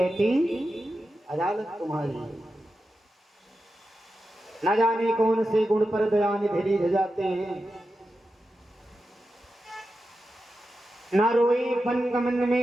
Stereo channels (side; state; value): both; normal; correlation 0.90